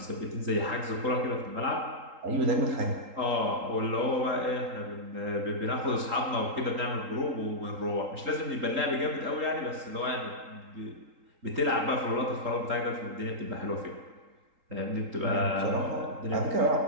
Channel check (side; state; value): left; late; 3.8 ms